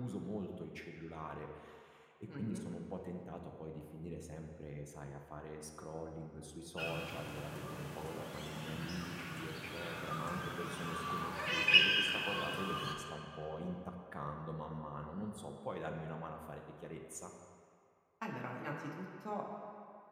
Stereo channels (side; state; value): both; identical; correlation 1.00